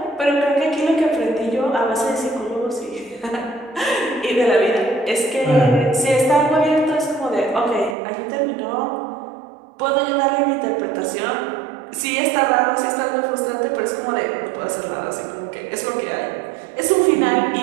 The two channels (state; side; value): drops out; left; at 8.0 s